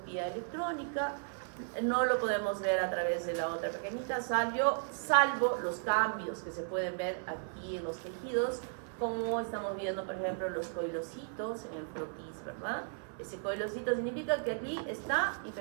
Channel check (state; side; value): silent; left; 54 dB below the other